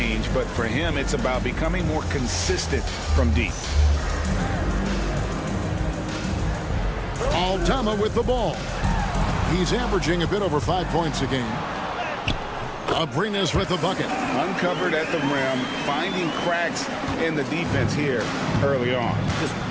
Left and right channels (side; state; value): both; identical; correlation 1.00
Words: but for him, it's about becoming more consistent from deep. Aldama with the ball. He's averaging a bit over 5 points a game. Abrinas with the bucket. Uncovered at the rim, finding cracks in the defense here early on. Just